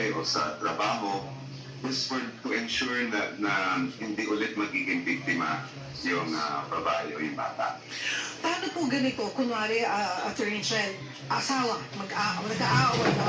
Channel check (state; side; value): identical; both; correlation 1.00